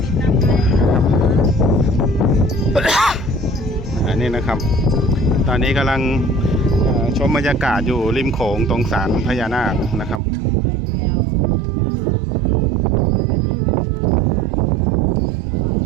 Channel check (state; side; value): drops out; left; at 10.2 s